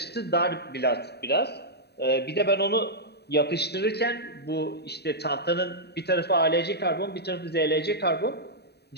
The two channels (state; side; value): late; right; 0.48 ms